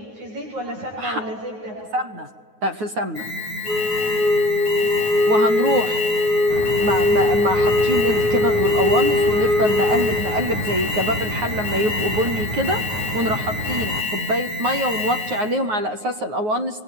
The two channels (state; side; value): late; left; 9.5 ms